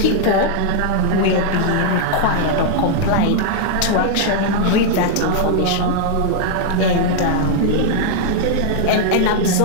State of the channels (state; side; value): different; both; correlation -0.01